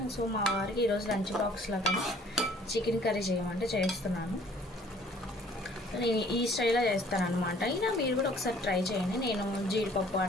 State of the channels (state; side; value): normal; both; correlation 0.56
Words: సో మా వారికి ఈరోజు లంచ్ బాక్స్లో కానీ చికెన్ కర్రీ చేయమంటే చేస్తున్నాను. నేను ఈ స్టైల్లో చేస్తాను అనమాట. ఇలా మీరు కూడా ఒకసారి ట్రై చేయండి. నేను జీడిపప్పు